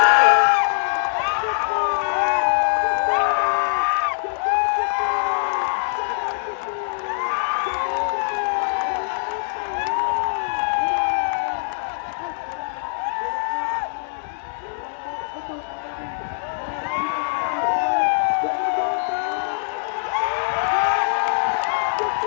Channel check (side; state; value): right; silent; digital silence